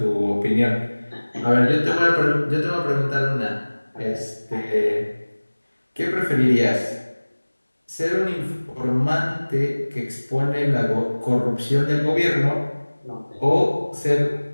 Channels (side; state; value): both; inverted; correlation -1.00